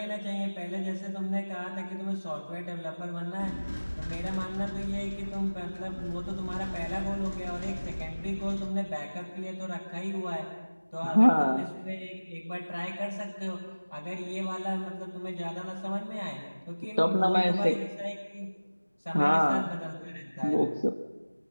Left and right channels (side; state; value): both; inverted; correlation -1.00